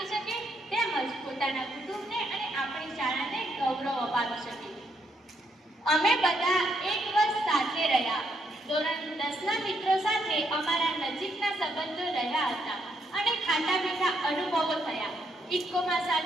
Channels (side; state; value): both; normal; correlation 0.75